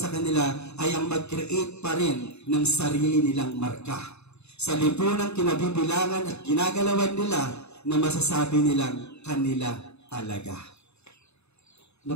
kanila ay ang mag-create pa rin ng sarili nilang marka. Sa lipunang kinabibilangan at ginagalawan nila na masasabi nilang kanila talaga.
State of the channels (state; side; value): late; right; 0.80 ms